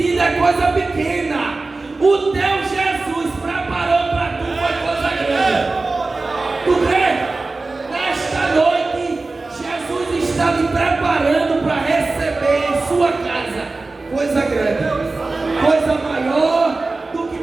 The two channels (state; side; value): quieter; left; 3.5 dB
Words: é coisa pequena. O teu Jesus preparou para tu foi coisa grande. Tu crê? Nesta noite, Jesus está me preparando para receber em sua casa coisa grande, coisa maior do que